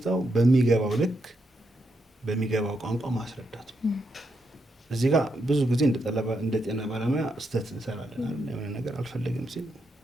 በሚገባው ልክ በሚገባው ቋንቋ ማስረዳት ነው። እዚህ ጋር ብዙ ጊዜ እንደ ጤና ባለሙያ ስህተት እንሰራለን አይደል? የሆነ ነገር አልፈልግም ሲል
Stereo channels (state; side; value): normal; both; correlation 0.82